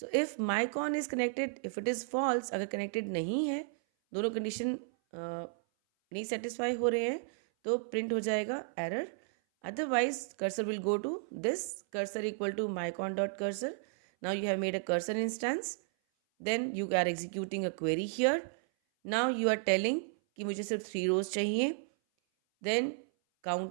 if mycon is connected, if it is false, अगर connected नहीं है, दोनों condition नहीं satisfy हो रहे हैं, तो print हो जाएगा error. Otherwise, cursor will go to this cursor equal to mycon.cursor. Now you have made a cursor instance. Then you are executing a query here. Now you are telling कि मुझे सिर्फ 3 rows चाहिए. Then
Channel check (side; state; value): left; silent; 55 dB below the other